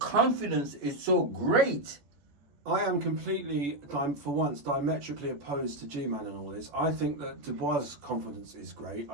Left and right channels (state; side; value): late; left; 14 ms